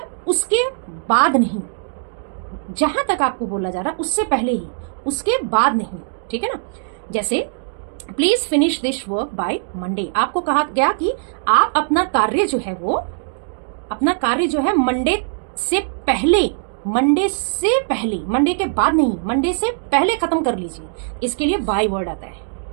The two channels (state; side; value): silent; left; digital silence